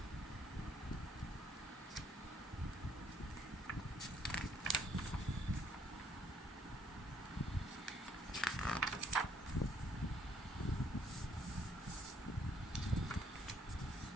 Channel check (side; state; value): both; normal; correlation 0.67